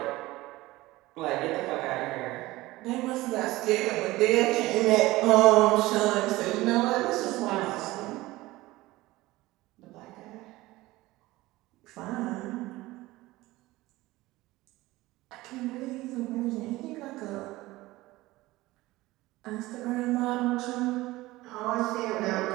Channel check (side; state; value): left; quieter; 18.8 dB